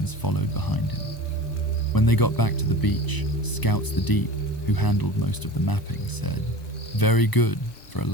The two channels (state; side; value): late; right; 1.0 ms